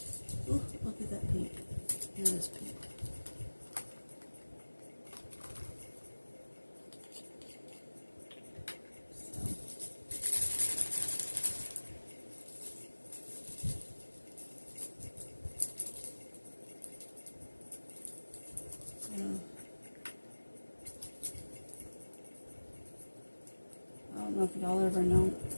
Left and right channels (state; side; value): inverted; both; correlation -1.00